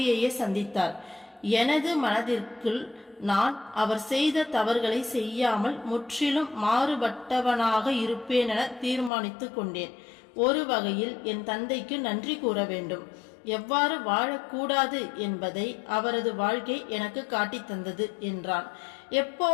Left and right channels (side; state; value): right; drops out; at 9.1 s